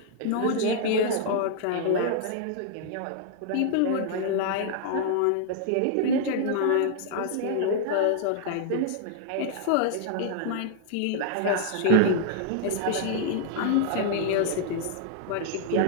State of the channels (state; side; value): different; both; correlation -0.01